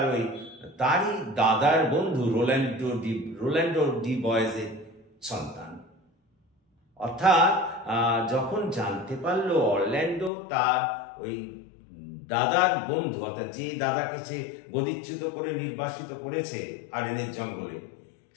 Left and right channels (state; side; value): drops out; right; at 10.3 s